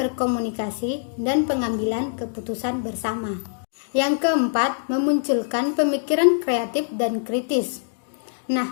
dan pengambilan keputusan bersama. Yang keempat, memunculkan pemikiran kreatif dan kritis.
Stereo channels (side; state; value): right; silent; digital silence